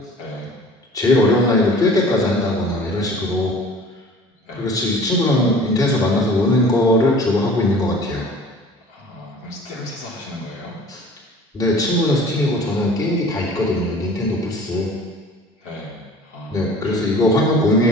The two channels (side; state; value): both; normal; correlation 0.46